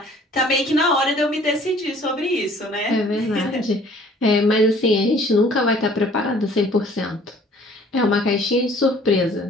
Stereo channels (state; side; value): normal; both; correlation 0.54